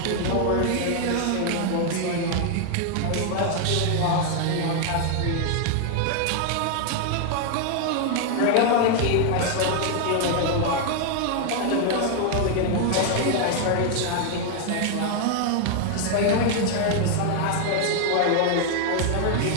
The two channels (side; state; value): both; different; correlation 0.00